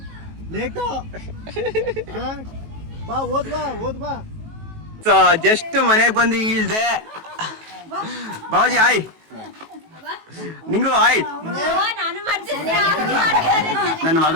ಬಾ ಓದ್ ಬಾ. ಜಸ್ಟ್ ಮನೆಗೆ ಬಂದು ಇಳ್ದೆ. ಬಾಬಾಜಿ ಆಯ್, ನಿಂಗೂ ಆಯ್. ನನ್ನ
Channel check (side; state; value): left; late; 18 ms